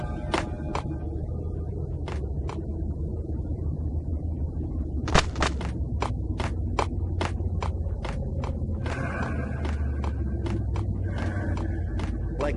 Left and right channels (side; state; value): both; identical; correlation 1.00